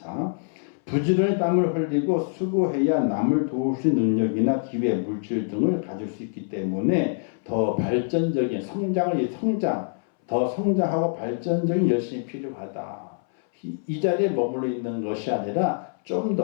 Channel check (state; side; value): silent; right; 62 dB below the other